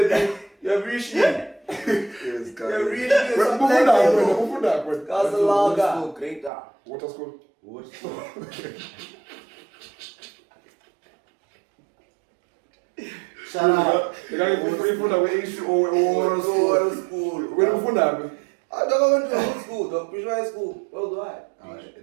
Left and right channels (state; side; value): drops out; left; at 6.5 s